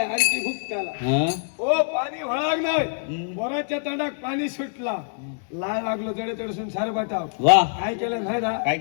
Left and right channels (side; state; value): right; silent; digital silence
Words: आणखी भूक त्याला हा हो पाणी वळाग नाही हम्म. पोराच्या तोंडात पाणी सुटला लाळ लागलो जडे तडसून सार बटाव वा काय केलं नाही ना काय